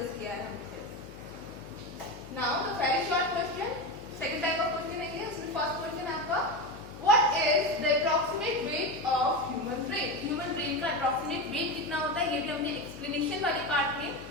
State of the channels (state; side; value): noise; left; hum, 14 dB below the sound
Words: किया है हमने। Now the very short question, second type of question है ये। उसमें फर्स्ट क्वेश्चन है आपका, what is the approximate weight of human brain? Human brain का अप्रॉक्सीमेट वेट कितना होता है? ये भी हमने एक्सप्लेनेशन वाले पार्ट में